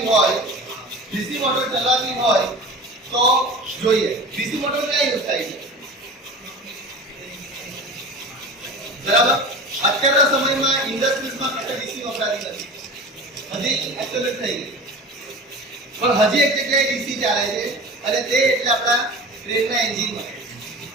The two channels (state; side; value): normal; both; correlation 0.34